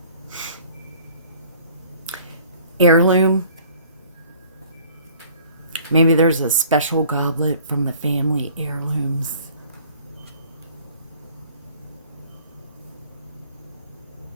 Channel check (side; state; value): both; inverted; correlation -0.53